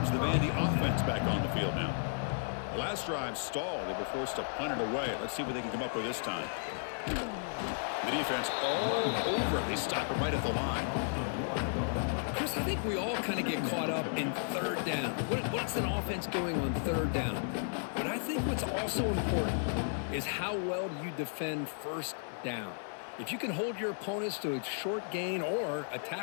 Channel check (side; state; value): right; silent; 55 dB below the other